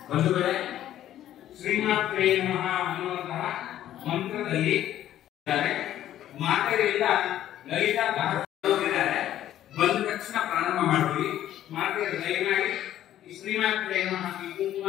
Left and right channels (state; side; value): quieter; right; 12.2 dB